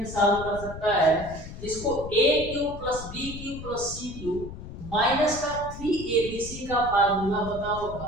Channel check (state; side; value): noise; left; rumble, 11 dB below the sound